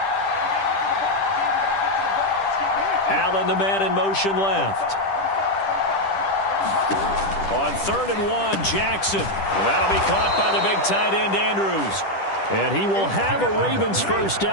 Allen, the man in motion left. On 3rd and 1, Jackson. That'll be caught by the big tight end, Andrews. And he will have a Ravens first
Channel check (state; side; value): late; right; 10 ms